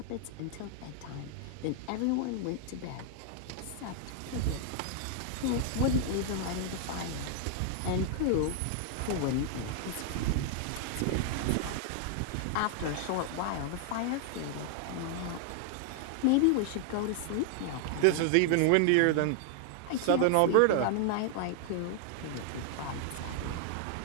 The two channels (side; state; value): both; different; correlation 0.00